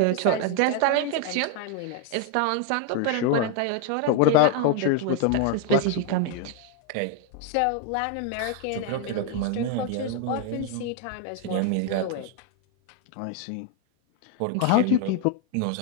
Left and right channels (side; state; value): both; different; correlation 0.01